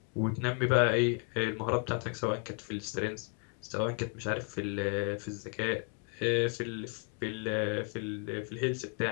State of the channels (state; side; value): quieter; right; 37.1 dB